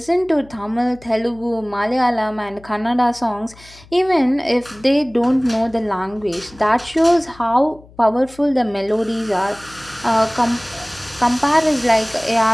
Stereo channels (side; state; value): left; noise; hum, 24 dB below the sound